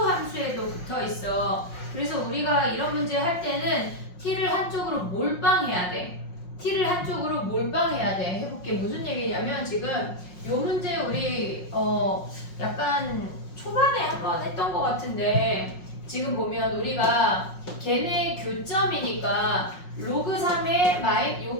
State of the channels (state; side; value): late; right; 5.5 ms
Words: 함수에도 붙어있어. 그래서 우리가 이런 문제 할 때는 t를 한쪽으로 몰빵해야 돼. t를 한쪽으로 몰빵해야 돼. 해볼게. 무슨 얘기냐면 지금 요 문제 우리 약간 초반에 한번 했던 것 같은데 지금 보면 우리가 걔네 교점이니까 로그 3의